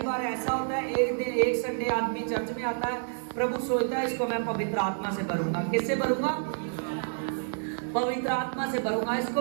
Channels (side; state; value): left; silent; digital silence